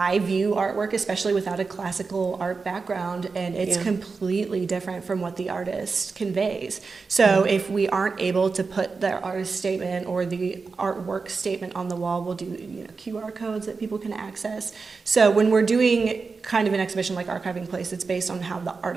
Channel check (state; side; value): quieter; left; 4.6 dB